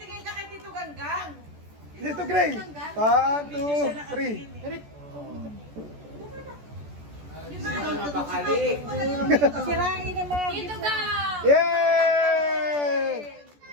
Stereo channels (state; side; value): late; left; 14 ms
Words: Dito, Gray. 1, 2, 3. Sirain na mga Tito Gab! Yay!